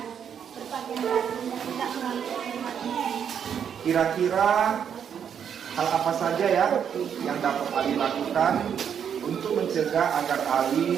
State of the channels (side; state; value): left; quieter; 8.1 dB